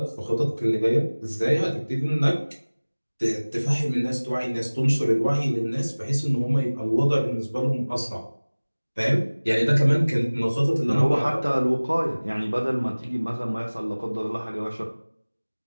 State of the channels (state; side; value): inverted; both; correlation -1.00